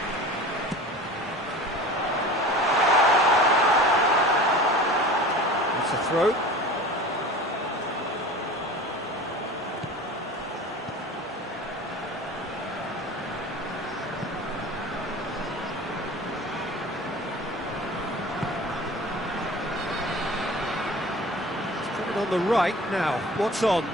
It's a throw. On the right now, what's on?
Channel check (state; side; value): normal; both; correlation 0.39